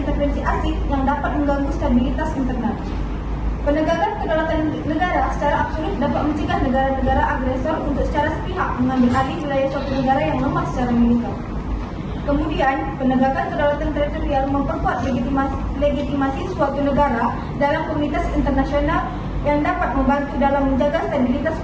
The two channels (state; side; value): identical; both; correlation 1.00